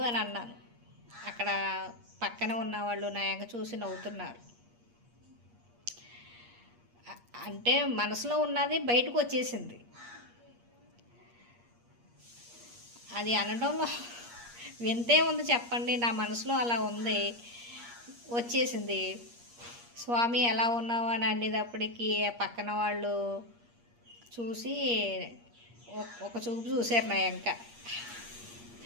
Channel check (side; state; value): left; late; 8.5 ms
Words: అన్నాను. అక్కడ పక్కన ఉన్నవాళ్ళు నా ఎంక చూసి నవ్వుతున్నారు. అంటే మనసులో ఉన్నది బయటకు వచ్చేసింది. అది అనడంలో వింతే ఉంది చెప్పండి. నా మనసులో అలా ఉంది, వచ్చేసింది. స్వామి ఎలా ఉన్నావు అని అనేటప్పటికీ పక్కన వాళ్ళు చూసి ఒక చూపు చూశారు నా ఎంక.